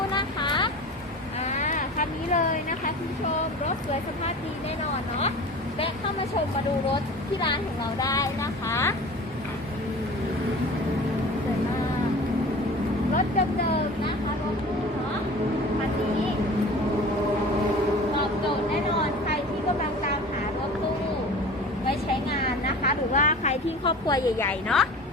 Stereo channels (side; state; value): both; normal; correlation 0.39